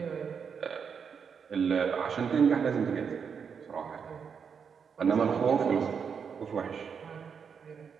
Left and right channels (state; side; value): quieter; left; 6.6 dB